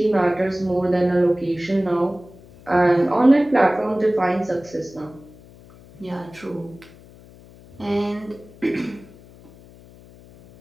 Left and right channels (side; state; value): left; noise; hum, 23 dB below the sound